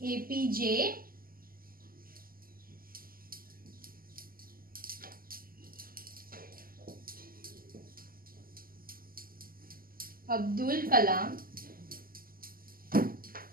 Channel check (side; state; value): left; late; 0.42 ms